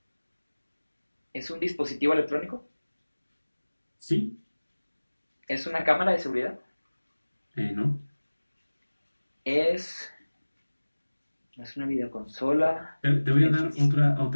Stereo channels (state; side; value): inverted; both; correlation -1.00